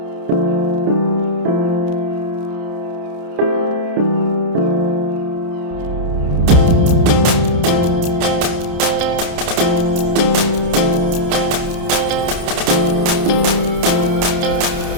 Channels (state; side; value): late; left; 29 ms